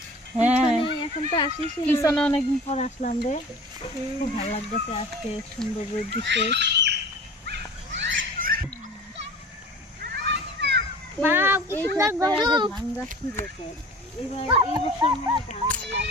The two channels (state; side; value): normal; both; correlation 0.41